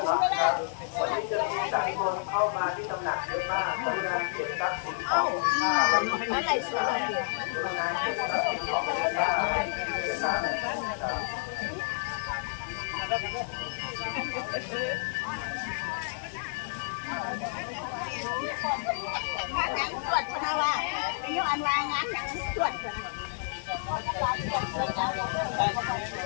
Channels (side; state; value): right; silent; 58 dB below the other